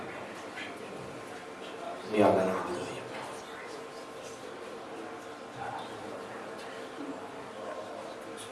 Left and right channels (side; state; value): both; identical; correlation 1.00